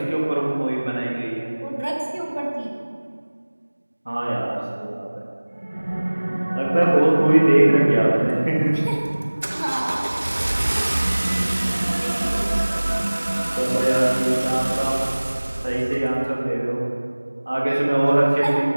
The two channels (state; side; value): inverted; both; correlation -1.00